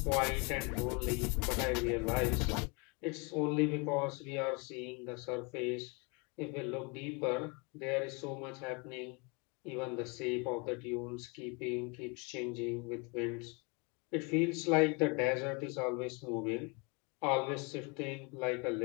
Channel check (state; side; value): quieter; right; 30.9 dB